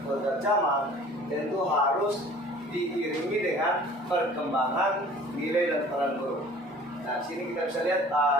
kodrat zaman tentu harus diiringi dengan perkembangan nilai dan peran guru. Nah, sini kita bisa lihat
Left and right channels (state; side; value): normal; both; correlation 0.48